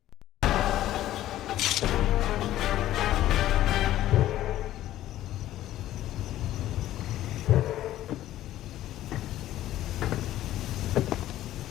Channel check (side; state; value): right; quieter; 13.7 dB